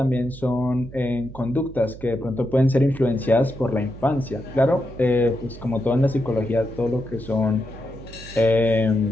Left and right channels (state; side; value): noise; right; hum, 16 dB below the sound